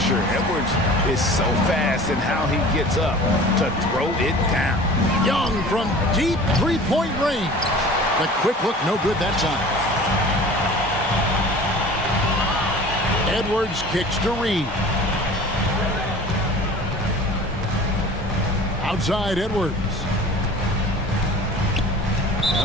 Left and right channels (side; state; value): both; normal; correlation 0.42